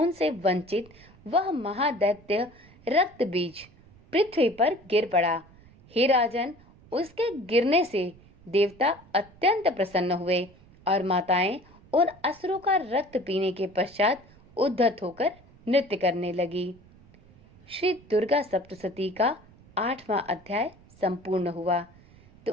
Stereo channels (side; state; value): right; noise; rumble, 25 dB below the sound